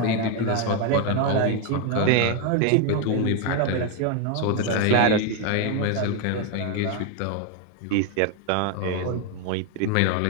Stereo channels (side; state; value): both; different; correlation 0.01